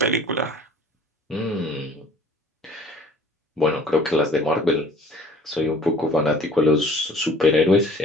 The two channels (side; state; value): both; normal; correlation 0.51